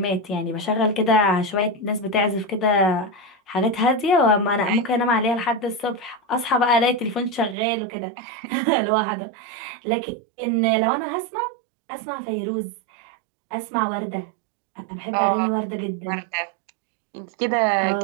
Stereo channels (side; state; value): left; drops out; at 7.6 s